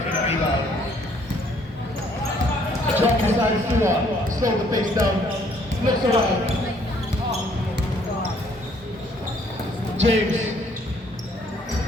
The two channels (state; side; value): normal; both; correlation 0.63